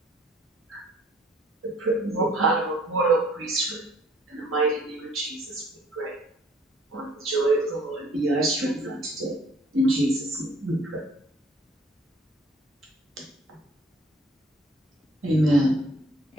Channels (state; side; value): normal; both; correlation 0.57